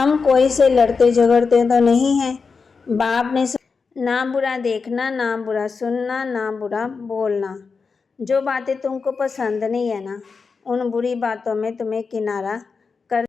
कोई से लड़ते झगड़ते तो नहीं हैं। बाप ने ना बुरा देखना, ना बुरा सुनना, ना बुरा बोलना। जो बातें तुमको पसंद नहीं है ना उन बुरी बातों में तुम्हें किनारा कर।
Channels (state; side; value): quieter; right; 5.0 dB